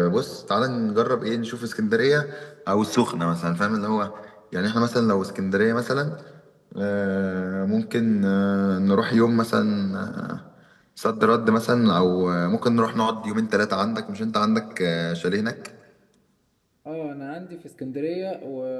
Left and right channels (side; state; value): both; identical; correlation 1.00